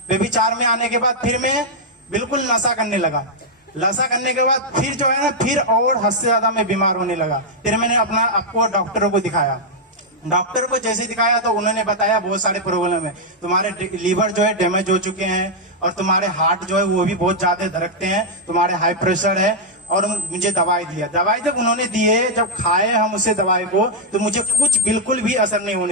व्यभिचार में आने के बाद फिर मैं बिल्कुल नशा करने लगा। नशा करने के बाद फिर जो है ना, फिर और हद से ज्यादा मैं बीमार होने लगा। फिर मैंने आपको डॉक्टरों को दिखाया। डॉक्टर को जैसे दिखाया तो उन्होंने बताया बहुत सारे प्रॉब्लम है, तुम्हारे लीवर जो है डैमेज हो चुके हैं और तुम्हारे हार्ट जो है वो भी बहुत ज्यादा धड़कते हैं, तुम्हारे हाई प्रेशर है। और मुझे दवाई दिया। दवाई जब उन्होंने दिए, जब खाए हम उसे दवाई को, तो मुझे कुछ बिल्कुल भी असर नहीं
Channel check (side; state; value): both; normal; correlation -0.04